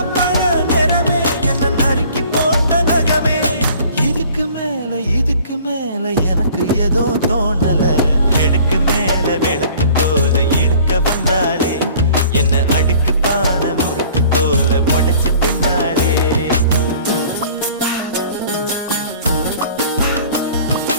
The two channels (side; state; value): both; inverted; correlation -0.51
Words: இதுக்கு மேல எனக்கு ஏதோ தோணல கிழக்கு மேல விளக்கு போல இருக்க வந்தாலே என்ன அடி